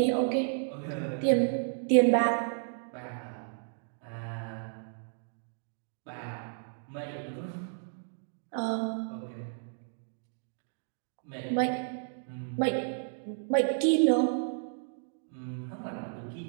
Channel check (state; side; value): silent; left; digital silence